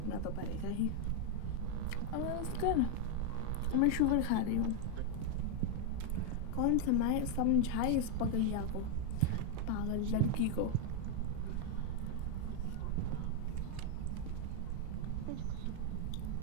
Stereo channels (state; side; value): different; both; correlation 0.00